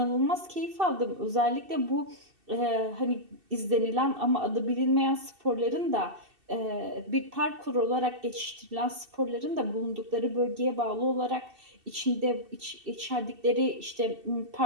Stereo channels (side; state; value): left; late; 2.7 ms